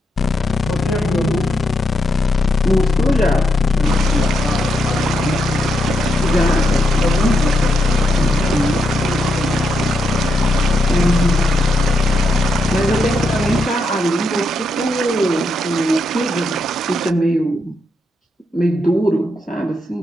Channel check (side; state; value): both; normal; correlation 0.81